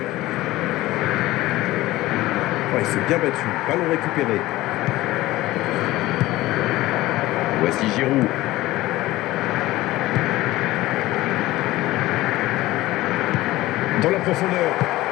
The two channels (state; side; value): quieter; right; 17.4 dB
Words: Oh, il s'est bien battu. Ballon récupéré. Voici Giroud. Dans la profondeur.